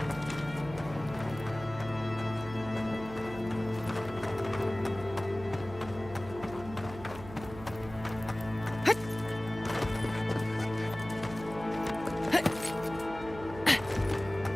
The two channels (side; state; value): right; noise; hum, 14 dB below the sound